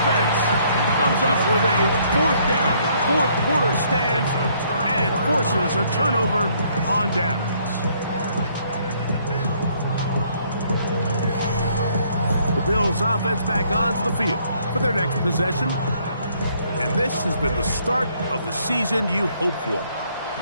comes up with a 4th down. 4th quarter stands and forces a turnover on downs. The Bills offense back onto the field for their next possession. And this has been the start of the season you hope for.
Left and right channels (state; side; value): inverted; both; correlation -0.66